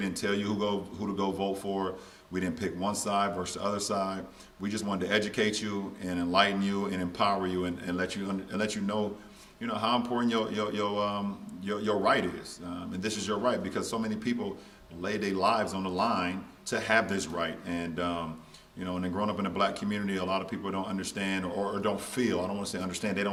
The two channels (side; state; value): both; identical; correlation 1.00